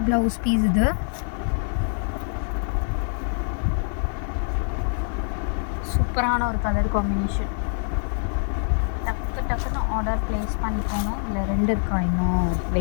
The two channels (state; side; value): silent; right; 62 dB below the other